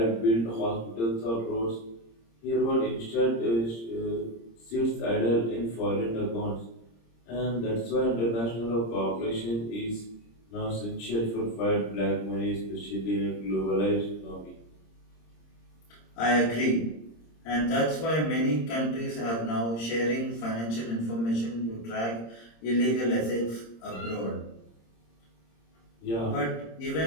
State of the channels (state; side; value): late; right; 26 ms